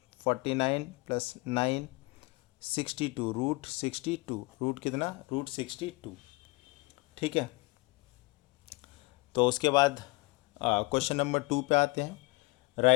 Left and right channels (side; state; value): right; quieter; 25.1 dB